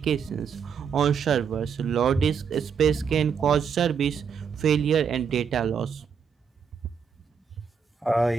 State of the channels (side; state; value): left; quieter; 6.7 dB